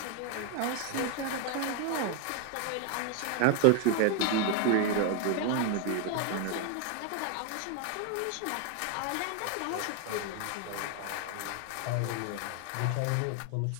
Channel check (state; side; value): different; both; correlation 0.01